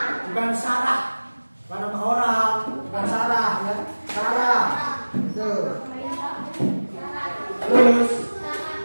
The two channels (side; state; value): both; inverted; correlation -1.00